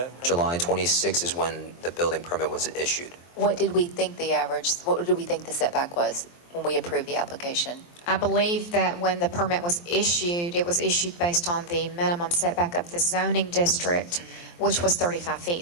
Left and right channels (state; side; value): late; right; 23 ms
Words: permit? July 26 is when the building permit was issued. what did we think the setback was when we approved the application? I believe that when the permit was issued, it was issued based on the minimum setback of the zoning district, which was 35 feet,